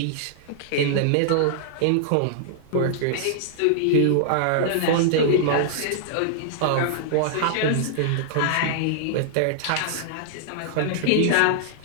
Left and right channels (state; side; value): different; both; correlation -0.01